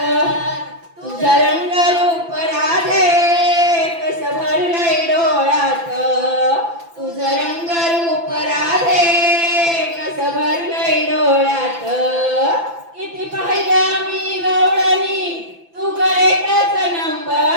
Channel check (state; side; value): late; left; 5.9 ms